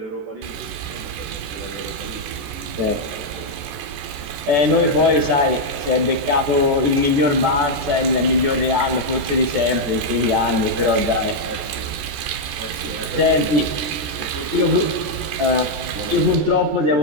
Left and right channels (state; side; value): late; left; 14 ms